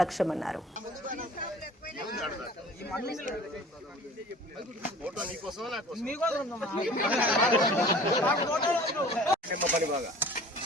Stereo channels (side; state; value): both; normal; correlation 0.45